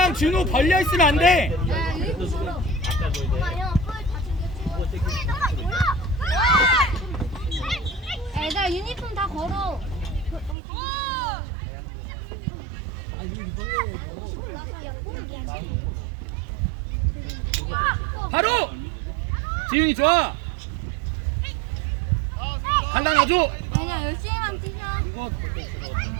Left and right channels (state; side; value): drops out; left; at 10.6 s